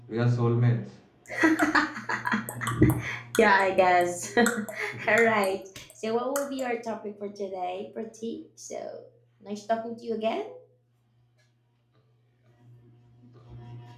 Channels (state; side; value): identical; both; correlation 1.00